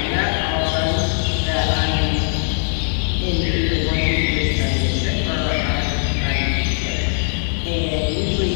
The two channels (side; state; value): right; silent; digital silence